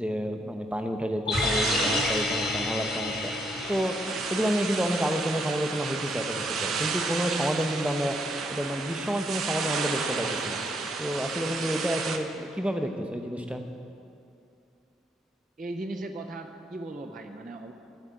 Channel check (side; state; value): both; normal; correlation 0.74